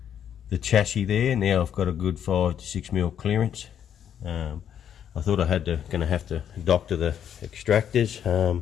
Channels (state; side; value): quieter; right; 9.1 dB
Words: the chassis there. Now I've got a good 5 to 6mm clearance. I thought I gonna have to doctor the extractors.